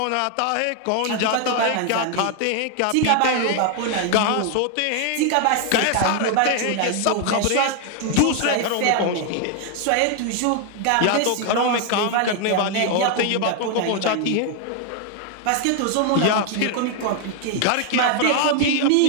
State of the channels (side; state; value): both; different; correlation 0.00